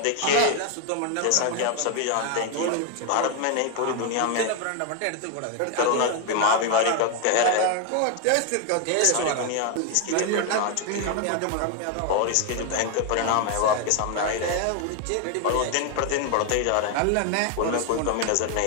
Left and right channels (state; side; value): different; both; correlation 0.01